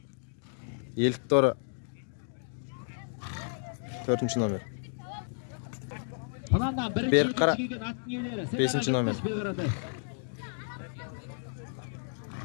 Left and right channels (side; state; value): right; silent; digital silence